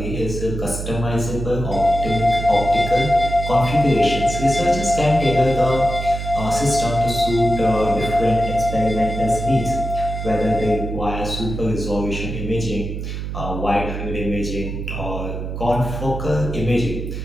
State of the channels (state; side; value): noise; right; hum, 5 dB below the sound